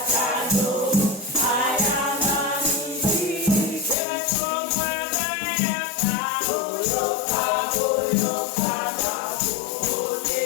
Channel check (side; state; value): right; drops out; at 4.0 s